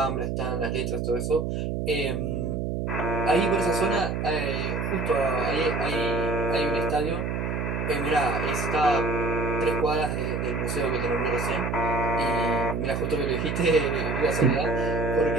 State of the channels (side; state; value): right; noise; hum, 1 dB below the sound